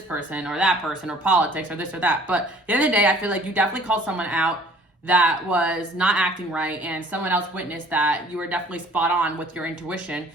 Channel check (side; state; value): both; normal; correlation 0.53